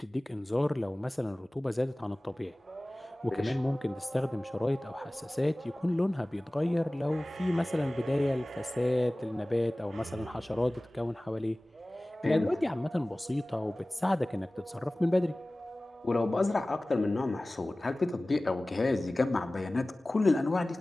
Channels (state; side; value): normal; both; correlation 0.98